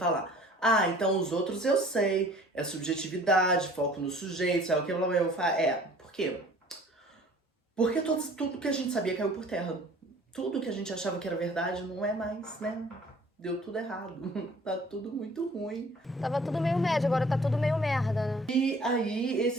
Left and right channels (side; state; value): both; normal; correlation 0.51